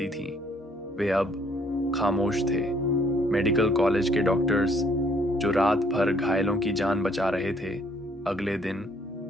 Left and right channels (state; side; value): normal; both; correlation 0.64